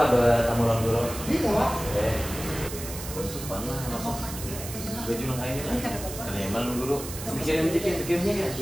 bertamu lang dulu. Iya, Pak. Mana masuk baju lang kain lah. Kan emang guru. Pikirin pikirnya kan.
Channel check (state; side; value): noise; right; hiss, 10 dB below the sound